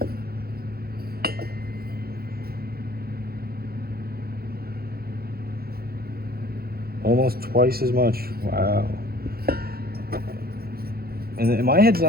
Almost twice as much. Wow. And my head's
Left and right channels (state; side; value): late; left; 0.44 ms